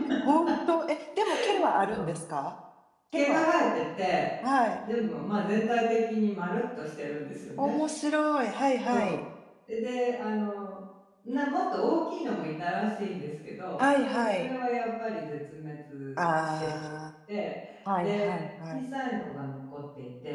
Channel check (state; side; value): identical; both; correlation 1.00